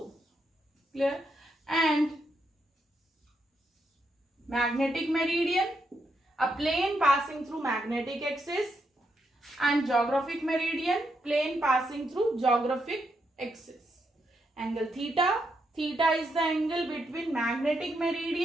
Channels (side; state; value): both; normal; correlation 0.80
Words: Clear? And magnetic meridian, a plane passing through magnetic axis, and geographic meridian, plane passing through geographic axis. Angle theta, theta is the angle between magnetic